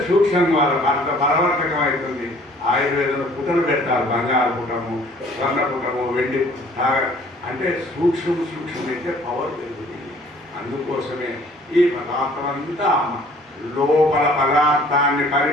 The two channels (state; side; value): normal; both; correlation 0.55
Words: సూక్ష్మంగా అంత బలవర్ధకం అవుతుంది. ఆయుర్వేదంలో పుటలు పెడతారు, బంగారు పుటము, స్వర్ణ పుటము, వెండి అంటే సూక్ష్మమైతే పవర్ పెరుగుతుంది. అందుకోసమే ఈ పదార్థం అంతా లోపల పదార్థాన్ని